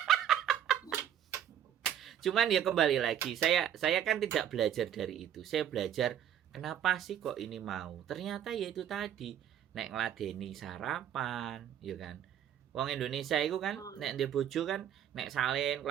Cuman ya kembali lagi, saya kan tidak belajar dari itu. Saya belajar kenapa sih kok ini mau. Ternyata ya itu tadi, nek ngladeni sarapan, ya kan. Wong Indonesia itu kan nek ndek bojo kan nek salin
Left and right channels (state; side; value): quieter; left; 10.0 dB